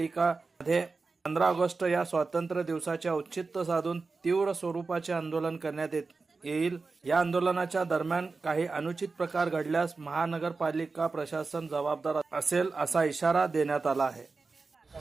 15 ऑगस्ट या स्वातंत्र्य दिवसाचे औचित्य साधून तीव्र स्वरूपाचे आंदोलन करण्यात येईल। या आंदोलनाच्या दरम्यान काही अनुचित प्रकार घडल्यास महानगरपालिका प्रशासन जबाबदार असेल असा इशारा देण्यात आला आहे।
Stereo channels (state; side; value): quieter; left; 4.1 dB